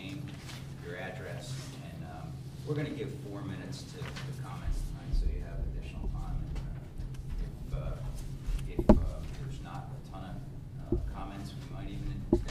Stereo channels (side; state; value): both; identical; correlation 1.00